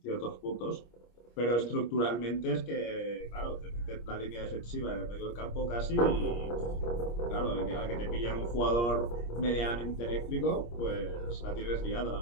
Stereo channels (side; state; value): right; late; 25 ms